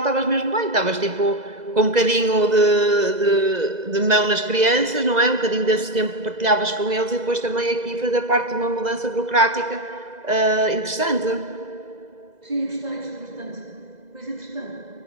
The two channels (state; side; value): late; left; 2.0 ms